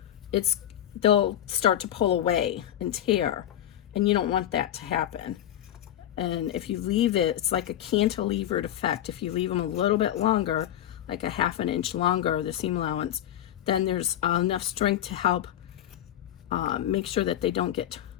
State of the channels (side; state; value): right; quieter; 11.7 dB